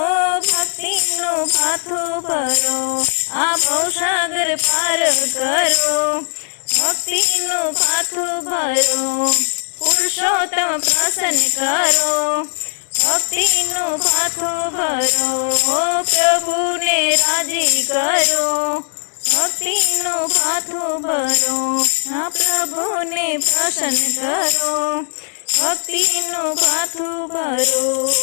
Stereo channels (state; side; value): silent; right; digital silence